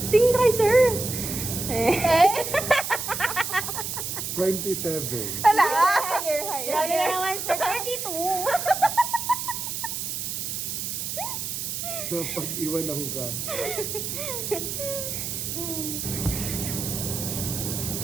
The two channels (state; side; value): noise; right; hiss, 4 dB below the sound